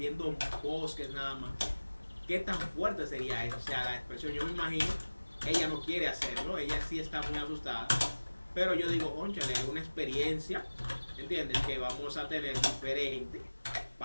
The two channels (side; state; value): both; inverted; correlation -1.00